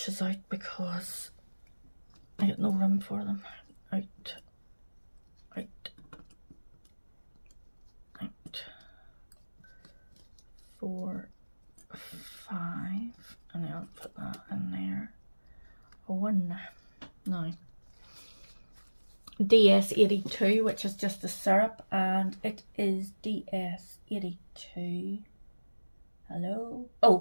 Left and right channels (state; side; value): inverted; both; correlation -1.00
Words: out because I got no room for them. Out. 4, 5, and then I'll put that in there. 1 now. DS82, which is just the syrup, and it is DS82. Hello.